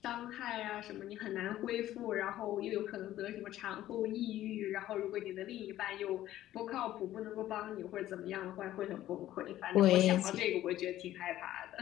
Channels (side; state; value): right; quieter; 13.7 dB